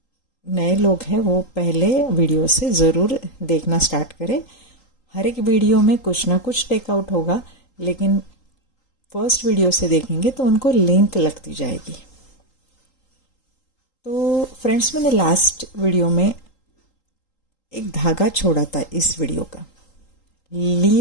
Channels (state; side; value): late; right; 3.8 ms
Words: नए लोग हैं वो पहले वीडियो से ज़रूर देखना स्टार्ट करें। हर एक वीडियो में कुछ ना कुछ टेकआउट होगा, लेकिन फर्स्ट वीडियो से देखेंगे तो उनको लिंक लगती जाएगी। तो फ्रेंड्स, मैंने लास्ट वीडियो में एक धागा छोड़ा था इस वीडियो का,